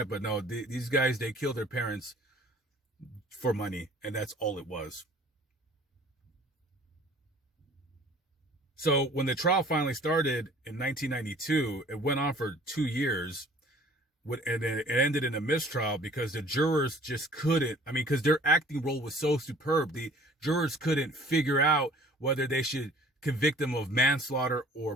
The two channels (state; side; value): normal; both; correlation 0.51